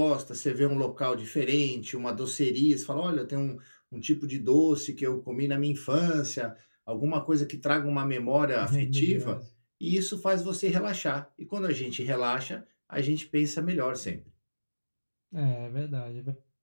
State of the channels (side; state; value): both; inverted; correlation -1.00